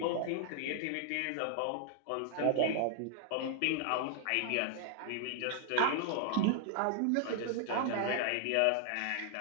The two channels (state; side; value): different; both; correlation 0.00